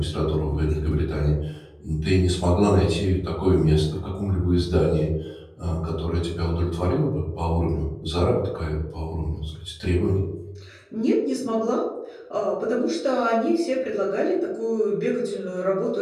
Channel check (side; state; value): both; identical; correlation 1.00